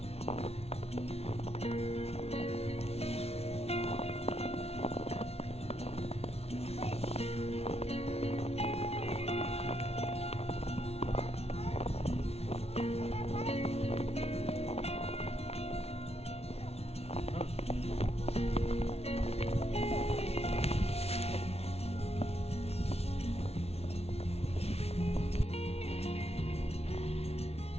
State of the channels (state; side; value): late; right; 0.30 ms